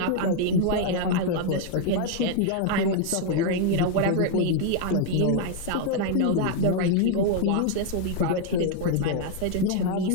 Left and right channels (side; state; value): both; different; correlation 0.00